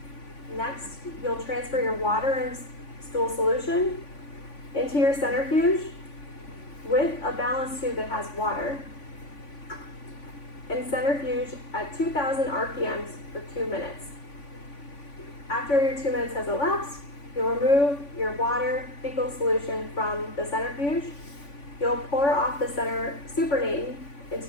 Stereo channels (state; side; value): late; right; 3.5 ms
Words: Next, you'll transfer your water and stool solution into your centrifuge with a balance tube that has water, and centrifuge at 2,000 RPMs for 2 minutes. After your 2 minutes has elapsed, you'll remove your water fecal solution from the centrifuge. You'll pour off the center supernatant